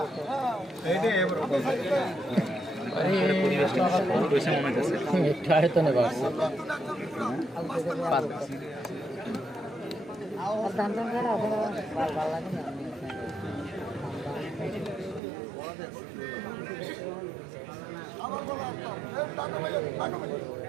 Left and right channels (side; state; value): left; drops out; at 15.2 s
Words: এইটা এবার একটু আয়তনে বাড়ছে।